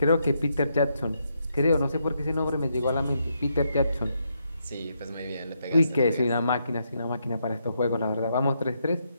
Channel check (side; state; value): both; inverted; correlation -0.79